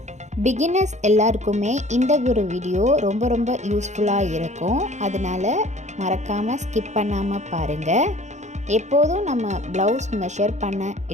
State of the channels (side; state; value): left; late; 0.34 ms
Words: பிகினர்ஸ் எல்லாருக்குமே இந்த ஒரு வீடியோ ரொம்ப யூஸ்ஃபுல்லாக இருக்கும். அதனால மறக்காமல் ஸ்கிப் பண்ணாமல் பாருங்கள். எப்போதும் நம்ம ப்ளவுஸ் மெஷர் பண்ண